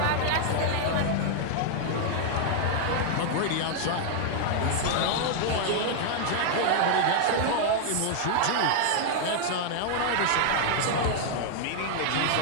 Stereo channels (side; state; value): both; different; correlation 0.00